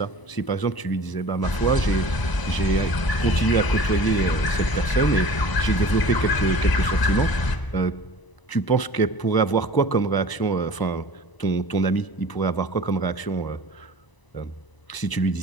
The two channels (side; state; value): right; late; 1.0 ms